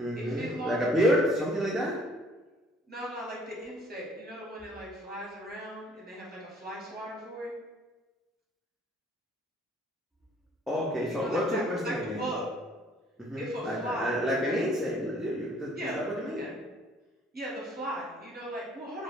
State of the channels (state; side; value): normal; both; correlation 0.58